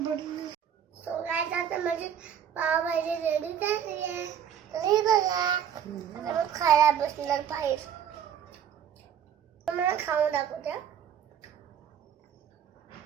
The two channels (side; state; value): left; quieter; 8.9 dB